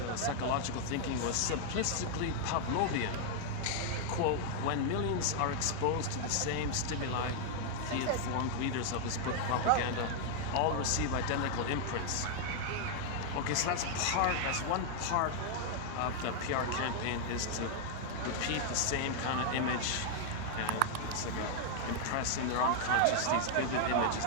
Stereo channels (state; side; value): different; both; correlation 0.00